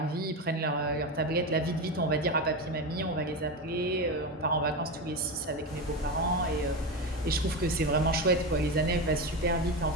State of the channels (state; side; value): normal; both; correlation 0.18